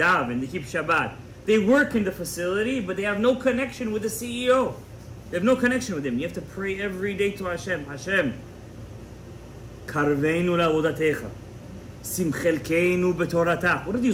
they keep Shabbat. They work in the facility, but they have no connection with the CEO. They have no connection with him. You have to pray every day to Hashem. Hashem, karveinu la'avodatecha, simchelkeinu b'toratach. What do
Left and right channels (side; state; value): both; identical; correlation 1.00